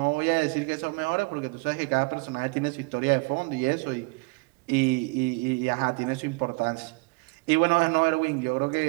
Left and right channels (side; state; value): left; quieter; 29.1 dB